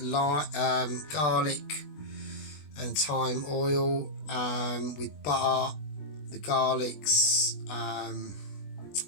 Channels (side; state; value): right; late; 20 ms